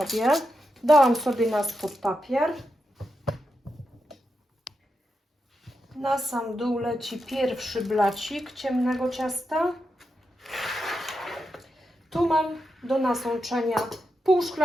Dałam sobie na spód papier. Na sam dół leci pierwszy blacik ciemnego ciasta. Tu mam do nasączenia pół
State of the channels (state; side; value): normal; both; correlation 0.87